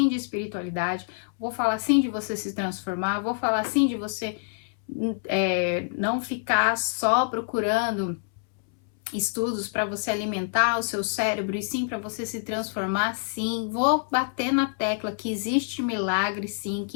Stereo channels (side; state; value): right; silent; 60 dB below the other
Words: de espiritualidade, vou falar sim de você se transformar, vou falar sim de você não ficar só procurando estudos para você alimentar o seu cérebro e sim para você se transformar, sim. Vou bater na tecla que existe milagre, sim,